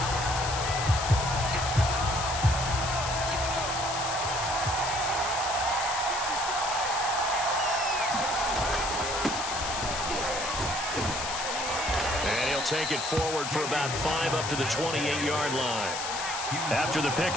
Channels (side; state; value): left; noise; hiss, 4 dB below the sound